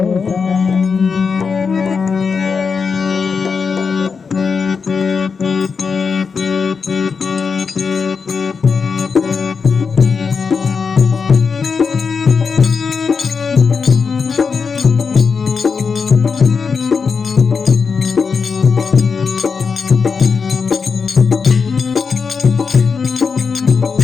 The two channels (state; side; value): quieter; right; 5.4 dB